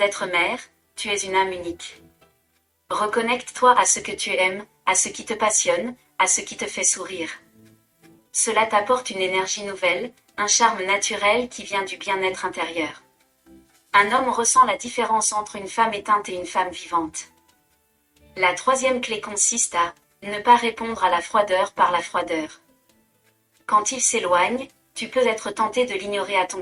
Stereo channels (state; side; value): identical; both; correlation 1.00